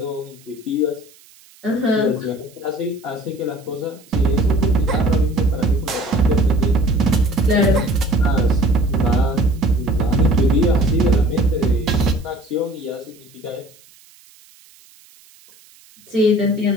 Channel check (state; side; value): noise; right; hiss, 27 dB below the sound